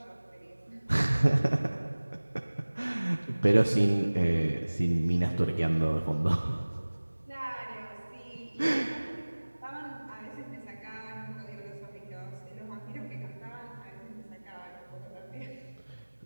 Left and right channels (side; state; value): both; inverted; correlation -1.00